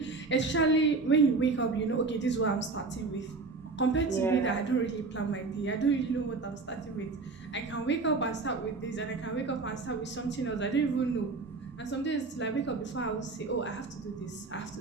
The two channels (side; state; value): left; quieter; 3.9 dB